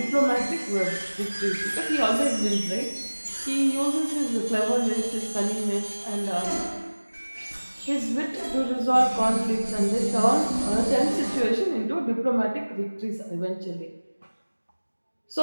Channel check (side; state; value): both; inverted; correlation -1.00